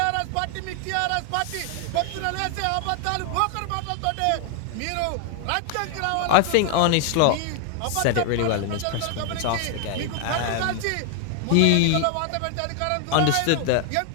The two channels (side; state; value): both; different; correlation 0.00